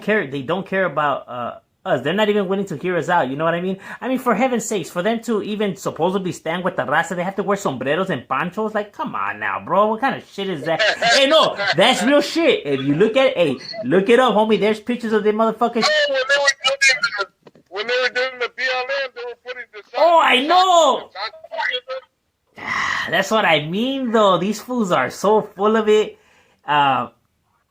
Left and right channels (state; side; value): identical; both; correlation 1.00